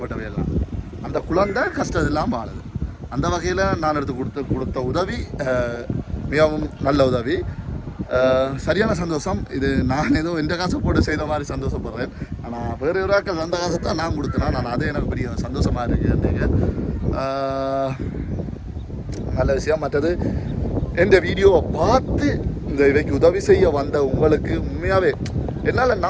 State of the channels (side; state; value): both; identical; correlation 1.00